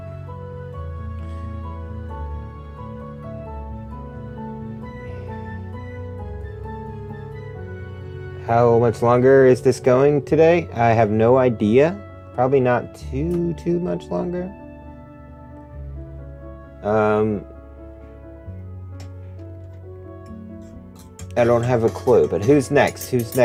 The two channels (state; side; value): identical; both; correlation 1.00